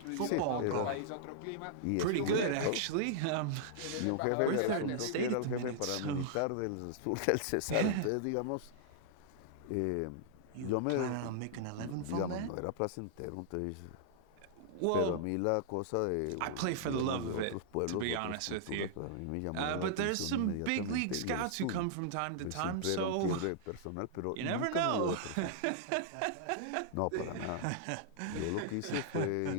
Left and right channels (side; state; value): both; different; correlation -0.01